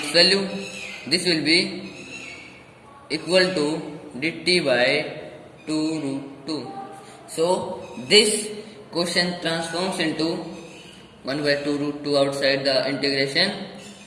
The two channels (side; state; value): both; identical; correlation 1.00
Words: value. This will be equal to dt by 2 root 2. So this question transforms into 1 by 2 root 2 outside the integration